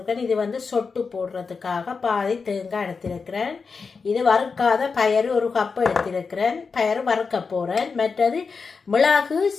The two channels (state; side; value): quieter; right; 5.0 dB